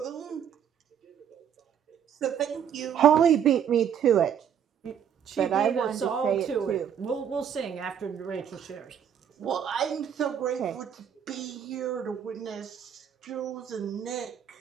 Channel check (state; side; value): quieter; left; 8.6 dB